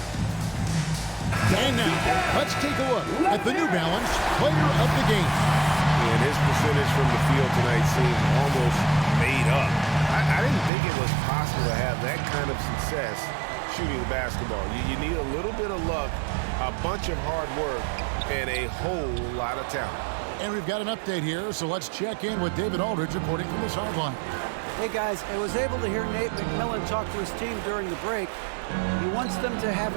And now, let's take a look at the New Balance Player of the Game. And his percentage from the field tonight seemed almost made up. I didn't think it was possible to have that kind of success shooting the basketball. You need a little bit of luck, a bunch of hard work, and a whole lot of talent. And we've got an update here, so let's check in with David Aldridge reporting from the sideline. Hey guys, I was able to hear Nate McMillan talk to his team during the break. He wants them to have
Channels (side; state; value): left; drops out; at 10.7 s